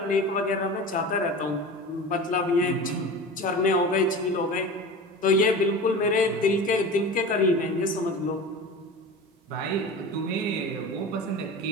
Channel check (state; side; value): normal; both; correlation 0.33